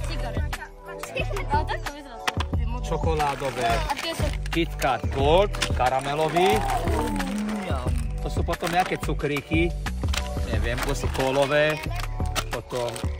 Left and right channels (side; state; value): both; identical; correlation 1.00